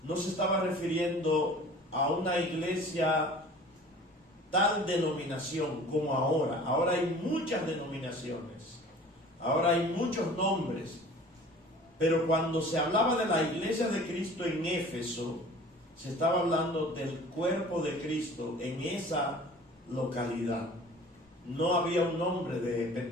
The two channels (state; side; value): normal; both; correlation 0.45